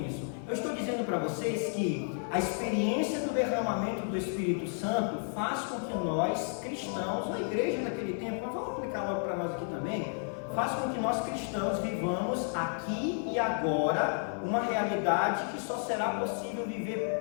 Eu estou dizendo para vocês que a experiência do derramamento do Espírito Santo faz com que nós, cristãos, na igreja daquele tempo, mas vamos aplicar logo para nós aqui também, faz com que nós cristãos vivamos aqui e agora uma realidade que só será possível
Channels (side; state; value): right; silent; 56 dB below the other